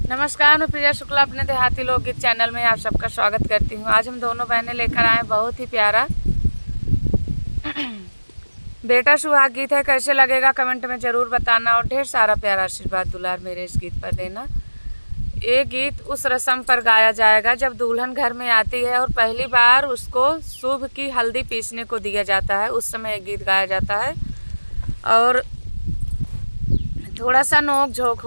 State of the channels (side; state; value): both; inverted; correlation -1.00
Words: नमस्कार, मैं प्रिया शुक्ला अपने देहाती लोकगीत चैनल में आप सबका स्वागत करती हूँ। आज हम दोनों बहनें लेकर आए बहुत ही प्यारा बेटा सुहाग गीत है। कैसे लगेगा कमेंट में ज़रूर बताना और ढेर सारा प्यारा आशीर्वाद दुलार मेरे इस गीत पर देना। ये गीत उस रस्म पर गाया जाएगा जब दुल्हन घर में आती है और पहली बार उसको शुभ की हल्दी पीसने को दिया जाता है, उस समय एक गीत गाया जाता है और थोड़ा सा नोक झोंक